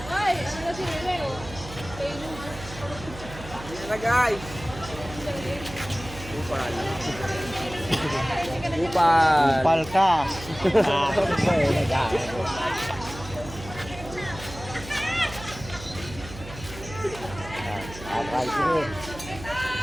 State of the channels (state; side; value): noise; right; hum, 14 dB below the sound